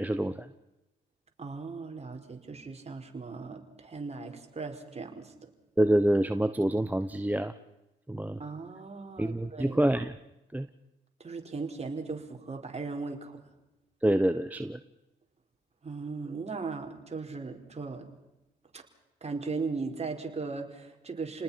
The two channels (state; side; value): normal; both; correlation 0.91